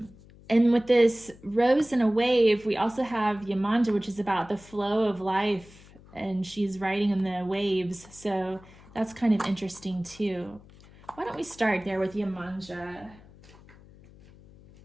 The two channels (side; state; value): left; noise; hum, 23 dB below the sound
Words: with this rose and a wave, we also have Yemanja, which is about the flow of life, and she's riding in the waves. So that's kind of interesting too. Why don't we start there with Yemanja?